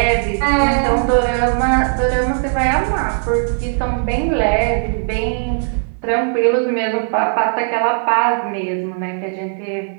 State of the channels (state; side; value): silent; left; digital silence